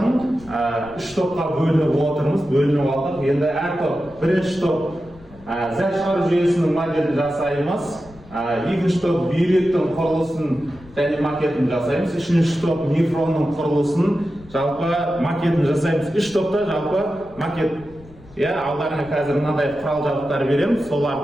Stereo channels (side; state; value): left; noise; rumble, 22 dB below the sound